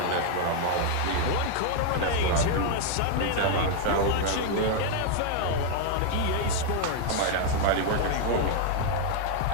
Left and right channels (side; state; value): both; different; correlation 0.00